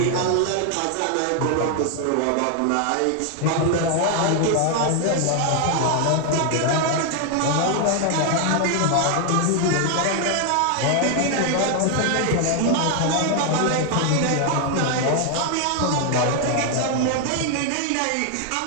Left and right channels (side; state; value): both; different; correlation 0.00